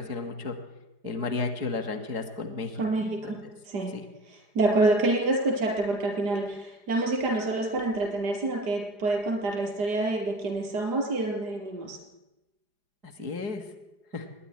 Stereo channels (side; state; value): left; late; 4.9 ms